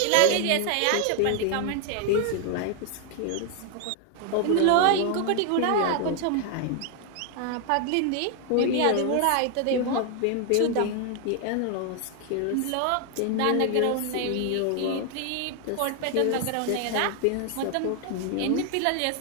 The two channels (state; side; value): different; both; correlation 0.00